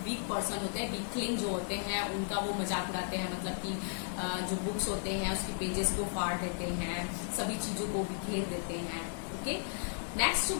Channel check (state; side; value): silent; right; digital silence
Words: वीक पर्सन होते हैं, वीकलिंग जो होते हैं उनका वो मजाक उड़ाते हैं, मतलब कि जो बुक्स होते हैं उसके पेजेस को फाड़ देते हैं, सभी चीजों को बिखेर देते हैं। ओके, नेक्स्ट जो